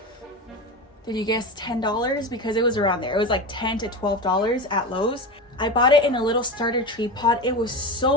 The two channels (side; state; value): both; normal; correlation 0.23